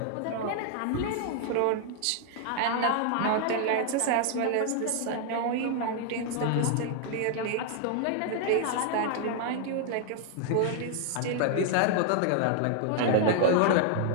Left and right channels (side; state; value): both; different; correlation -0.01